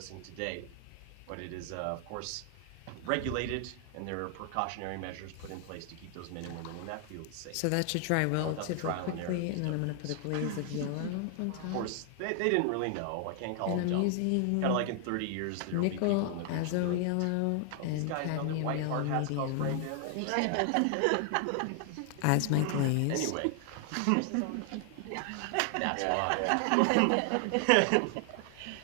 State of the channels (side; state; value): both; different; correlation 0.00